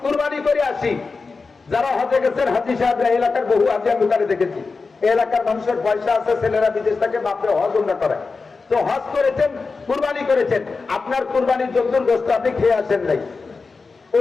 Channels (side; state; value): right; quieter; 4.3 dB